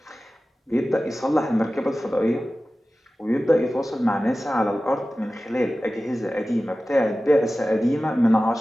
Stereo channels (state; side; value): normal; both; correlation 0.95